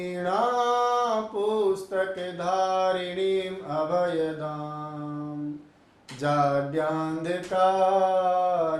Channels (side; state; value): both; identical; correlation 1.00